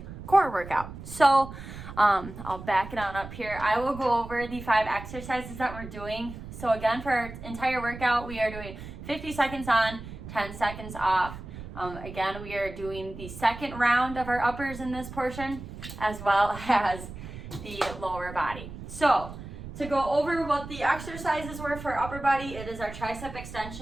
core workout. So I'll back it on up here. I will go over the 5 exercises that we're doing. So again, for our entire workout, we are doing 50 seconds on, 10 seconds off. Again, we are doing the second round of our uppers in this portion, as well as the lower body. So to go over what the exercises were for upper body, it is our tricep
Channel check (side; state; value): right; noise; rumble, 12 dB below the sound